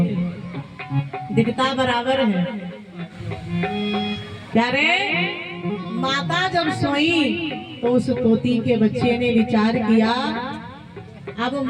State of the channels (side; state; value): both; identical; correlation 1.00